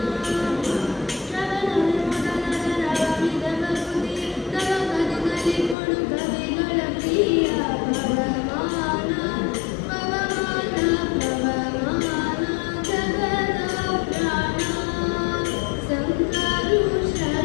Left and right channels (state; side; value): drops out; right; at 5.8 s